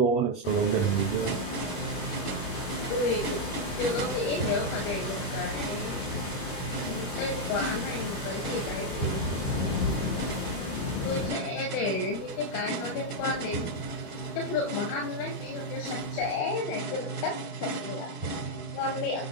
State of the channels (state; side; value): late; right; 21 ms